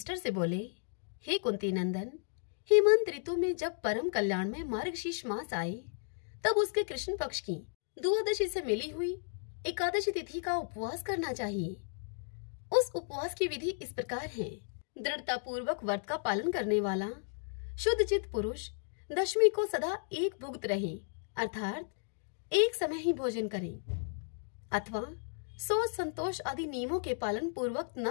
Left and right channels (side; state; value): right; silent; digital silence